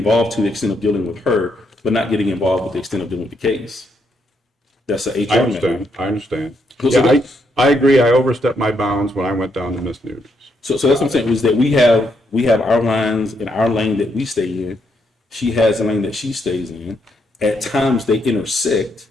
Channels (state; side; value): normal; both; correlation 0.77